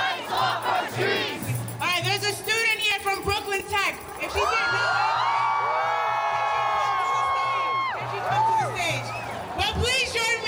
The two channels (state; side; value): identical; both; correlation 1.00